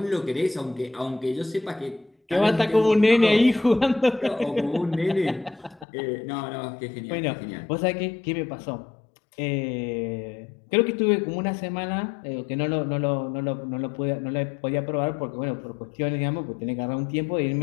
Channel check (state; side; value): drops out; right; at 5.9 s